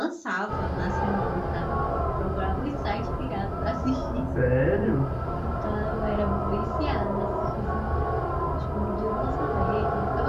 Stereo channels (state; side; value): identical; both; correlation 1.00